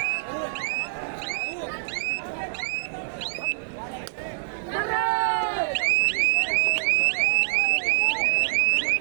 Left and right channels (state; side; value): silent; left; digital silence